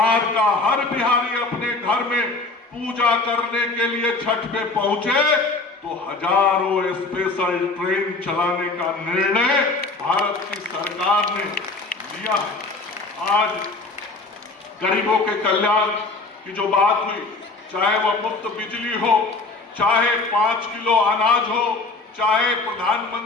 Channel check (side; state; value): right; quieter; 3.4 dB